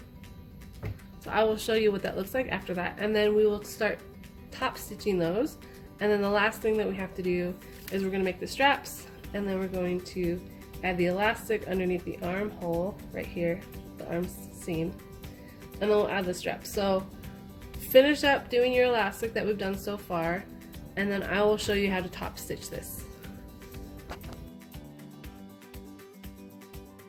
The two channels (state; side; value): identical; both; correlation 1.00